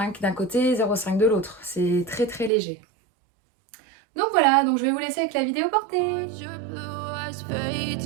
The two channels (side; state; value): left; drops out; at 2.5 s